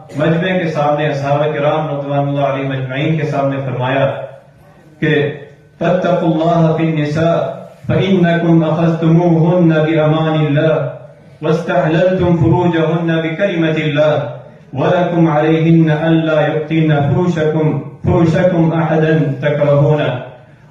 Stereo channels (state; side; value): identical; both; correlation 1.00